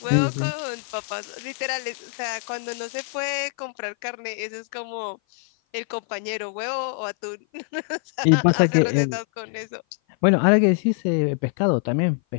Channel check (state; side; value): silent; right; 56 dB below the other